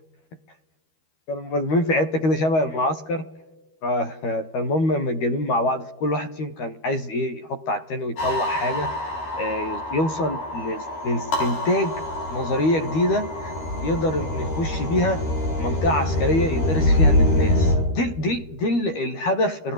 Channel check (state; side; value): late; right; 13 ms